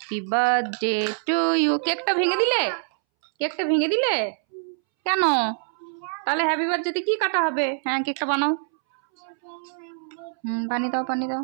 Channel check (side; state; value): left; silent; 62 dB below the other